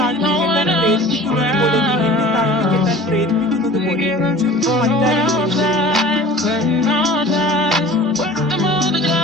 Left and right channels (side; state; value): both; normal; correlation 0.43